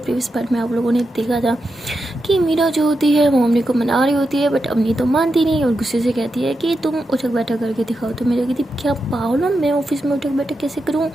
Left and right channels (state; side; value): normal; both; correlation 0.87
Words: पार्ट में आप लोगों ने देखा था कि मीरा जो होती है वो अमनी को मना रही होती है, बट अमनी तो मानती नहीं और गुस्से से कहती है कि तुम उठक बैठक करके दिखाओ। तो मेरा कहती क्या पागल हो, मैं ऑफिस में उठक बैठक कैसे करूँ?